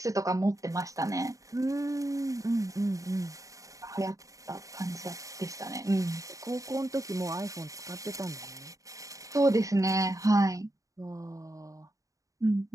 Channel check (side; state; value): left; late; 0.16 ms